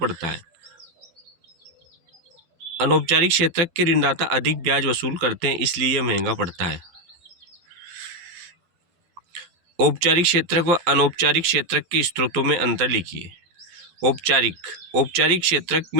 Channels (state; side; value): late; left; 12 ms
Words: है? अनौपचारिक क्षेत्र के ऋणदाता अधिक ब्याज वसूल करते हैं, इसलिए यह महंगा पड़ता है। औपचारिक क्षेत्रक व अनौपचारिक क्षेत्रक के स्रोतों में अंतर लिखिए। औपचारिक क्षेत्रक